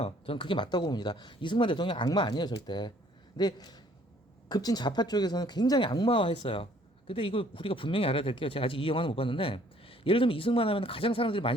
저는 그게 맞다고 봅니다. 이승만 대통령 악마 아니에요, 절대. 근데 급진 좌파 쪽에서는 굉장히 악마화했어요. 근데 이거 우리가 분명히 알아야 될 게요. 제가 아직 이 영화는 못 봤는데 예를 들면 이승만 하면 가장 사람들이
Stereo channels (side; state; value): both; normal; correlation 0.59